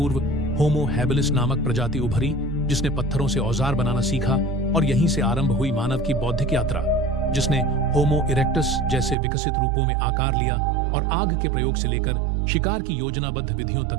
होमो हैबिलिस नामक प्रजाति उभरी, जिसने पत्थरों से औजार बनाना सीखा, और यहीं से आरंभ हुई मानव की बौद्धिक यात्रा, जिसने होमो इरेक्टस जैसे विकसित रूपों में आकार लिया और आग के प्रयोग से लेकर शिकार की योजनाबद्ध विधियों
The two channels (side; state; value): left; drops out; at 9.2 s